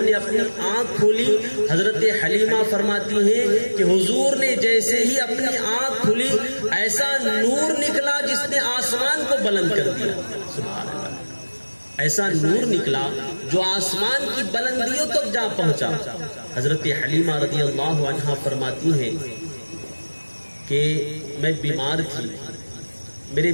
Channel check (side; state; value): both; inverted; correlation -1.00